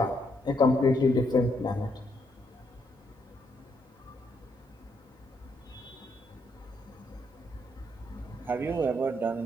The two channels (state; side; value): normal; both; correlation 0.75